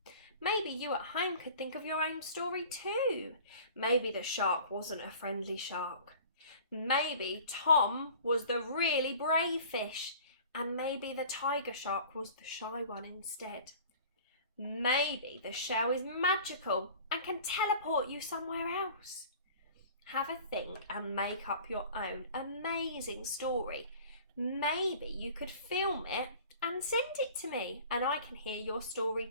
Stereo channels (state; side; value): inverted; both; correlation -0.44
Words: Maybe you at home could think of your own story too. Maybe the shark wasn't a friendly shark. Maybe Tom was the really brave fish, and maybe the tiger shark was the shy one instead. Maybe the shell is magical and can teleport you somewhere else. Have a think and make up your own amazing story. Maybe you could film it and send it to me, and I can hear your story